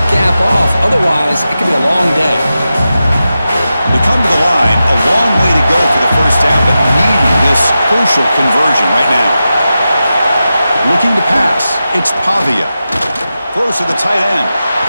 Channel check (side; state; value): both; inverted; correlation -0.91